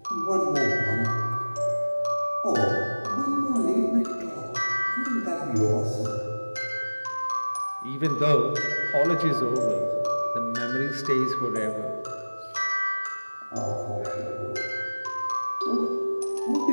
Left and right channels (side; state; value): both; inverted; correlation -1.00